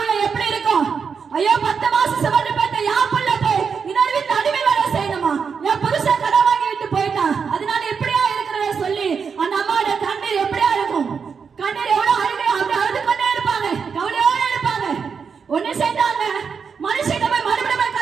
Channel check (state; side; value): quieter; left; 6.0 dB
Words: எப்படி இருக்கும், ஐயோ 10 மாசம் சுமந்து பெற்ற என் புள்ள போய் இன்னொரு வீட்டு அடிமை வேலை செய்யணுமா, என் புருஷன் கடன் வாங்கி விட்டு போயிட்டான், அதனால எப்படியா இருக்கிறத சொல்லி அந்த அம்மாவோட கண்ணீர் எப்படியா இருக்கும், கண்ணீர் எவ்வளவு அழுகை அப்படி அழுது கொண்டே இருப்பாங்க, கவலையோட இருப்பாங்க. ஒண்ணு செய்தாங்க, மனுஷன் போய் மறுபடியும்